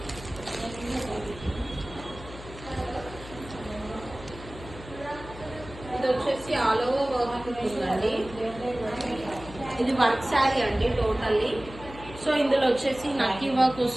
ఇది వచ్చేసి ఆల్ ఓవర్ వర్క్ ఉంటుందండి. ఇది వర్క్ శారీ అండి టోటల్లీ. సో ఇందులో వచ్చేసి నక్కి వర్క్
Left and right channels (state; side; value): noise; left; hum, 15 dB below the sound